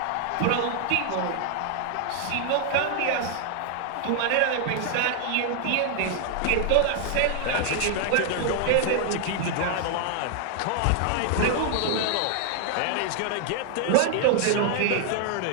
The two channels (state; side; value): different; both; correlation 0.00